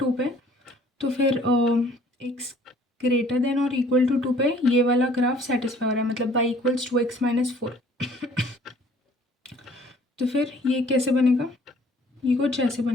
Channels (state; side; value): normal; both; correlation 0.56